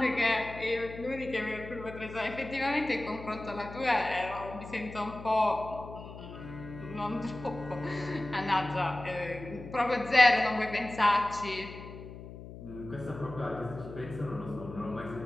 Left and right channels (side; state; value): left; noise; hum, 13 dB below the sound